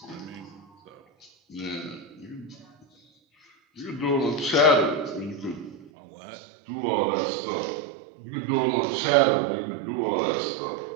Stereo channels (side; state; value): left; drops out; at 5.9 s